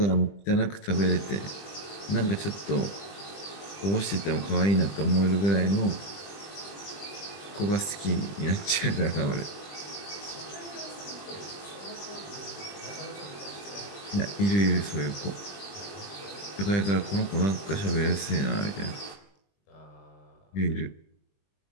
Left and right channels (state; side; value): late; right; 20 ms